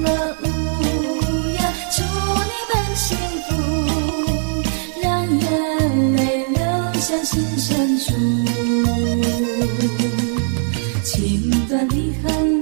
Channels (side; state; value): left; silent; digital silence